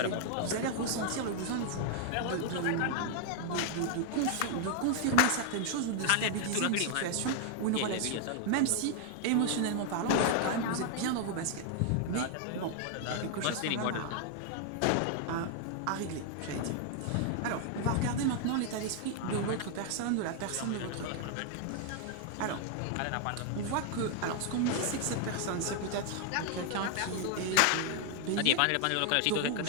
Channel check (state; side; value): different; both; correlation 0.00